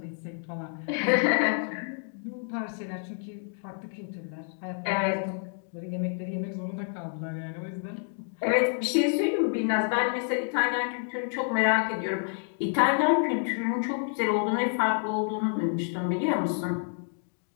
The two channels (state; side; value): silent; right; 59 dB below the other